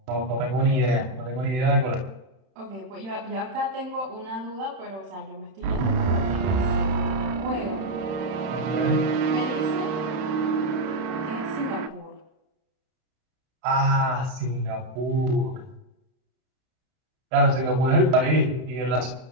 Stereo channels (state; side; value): late; left; 31 ms